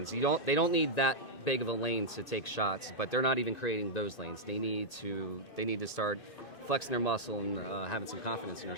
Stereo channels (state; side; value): late; right; 2.6 ms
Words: They don't need that big of a lane to take shots, but they're not even creating those lanes. They need to start flexing their muscle and having some confidence in their